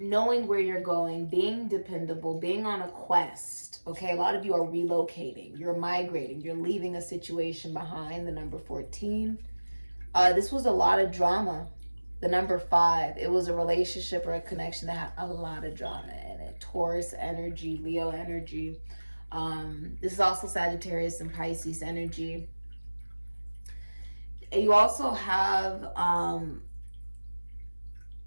where you're going, being dependable, being on a quest. Okay, a lot of you are relocating, you're migrating, you're leaving a situation behind, the number 14. This was a lot of drama. The number 5, it was a relationship or a connection that had a lot of drama in it. Taurus energy, Leo energy. This is also Sagittarius and Pisces energy. You also have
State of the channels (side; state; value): both; inverted; correlation -1.00